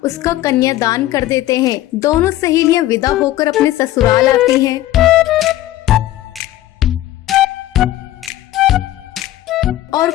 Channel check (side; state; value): right; quieter; 14.7 dB